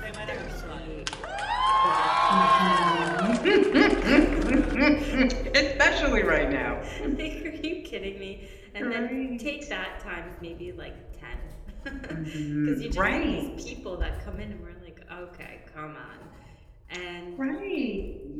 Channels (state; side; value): identical; both; correlation 1.00